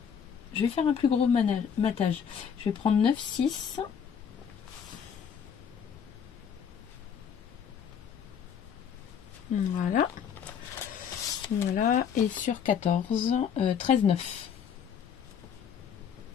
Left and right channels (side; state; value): right; quieter; 7.6 dB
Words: Je vais faire un plus gros matage. Je vais prendre 9,6. Voilà. Voilà. Et sur 14, 13,9.